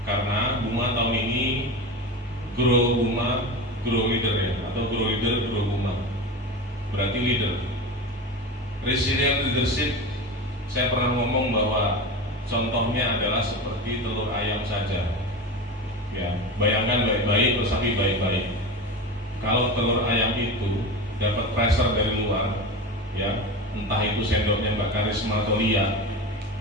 Karena Buma tahun ini grow Buma, grow leader ya, atau grow leader, grow Buma. Berarti leader. Resilient leadership, saya pernah ngomong bahwa contohnya adalah seperti telur ayam saja. Ya, bayangkan baik-baik, resapi baik-baik. Kalau telur ayam itu dapat pressure dari luar, ya, entah itu sendoknya Mbak Karisma atau Lia,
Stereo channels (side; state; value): both; normal; correlation 0.25